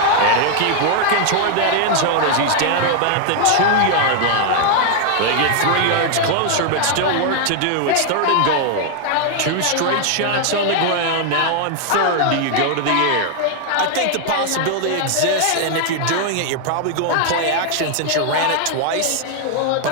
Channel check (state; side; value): different; both; correlation 0.00